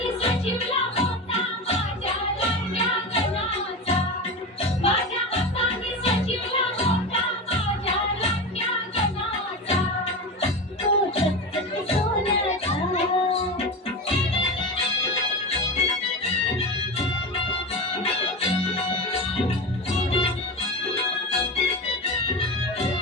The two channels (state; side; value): normal; both; correlation 0.23